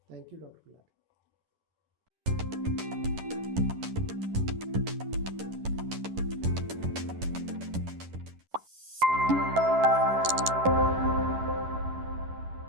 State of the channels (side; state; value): left; late; 11 ms